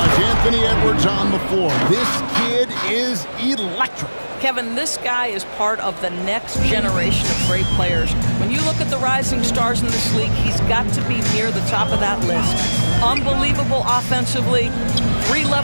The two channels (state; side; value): inverted; both; correlation -1.00